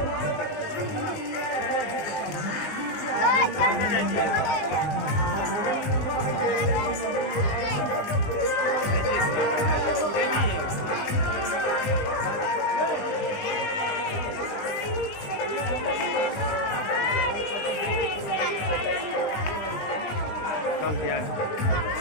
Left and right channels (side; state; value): right; late; 20 ms